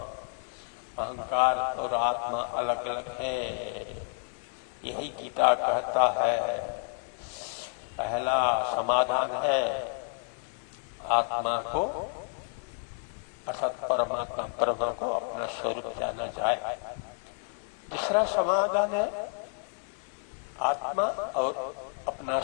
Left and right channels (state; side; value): silent; right; 58 dB below the other